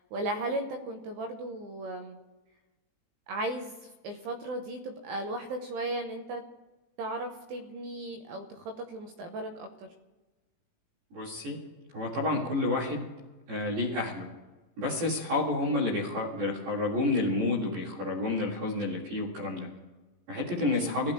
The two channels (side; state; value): left; late; 18 ms